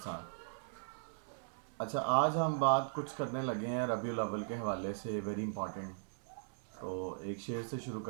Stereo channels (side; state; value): left; silent; 52 dB below the other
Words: ساتھ۔ اچھا، آج ہم بات کچھ کرنے لگے ہیں ربیع الاول کے حوالے سے، ویری امپورٹنٹ۔ تو ایک شعر سے شروع